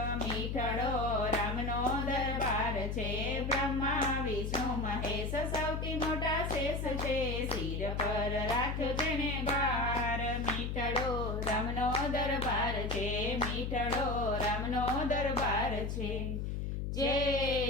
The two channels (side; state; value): left; noise; hum, 2 dB below the sound